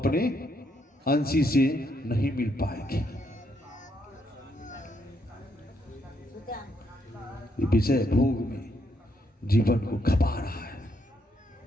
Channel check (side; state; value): both; normal; correlation 0.76